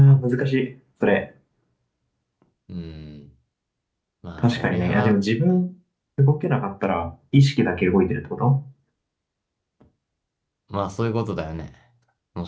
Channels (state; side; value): identical; both; correlation 1.00